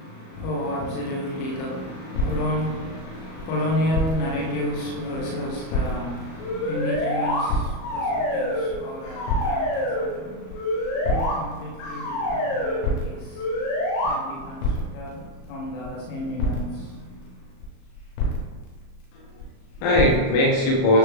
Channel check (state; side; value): late; right; 37 ms